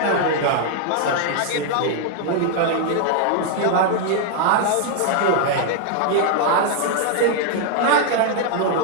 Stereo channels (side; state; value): both; different; correlation 0.00